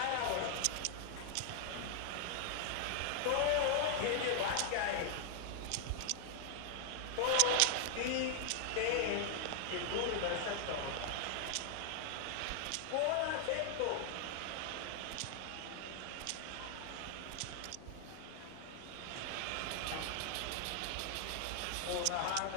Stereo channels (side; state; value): both; different; correlation 0.00